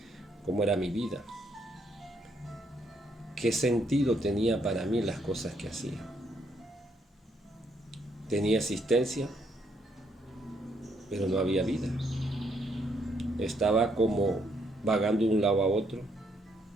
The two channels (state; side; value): normal; both; correlation 0.73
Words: ¿Cómo era mi vida? ¿Qué sentido tenía para mí las cosas que hacía? Tenía existencia, pero no había vida. Estaba como vagando de un lado a otro,